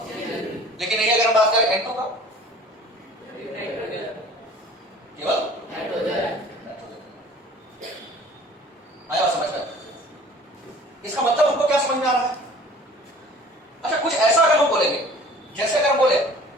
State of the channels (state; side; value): normal; both; correlation 0.48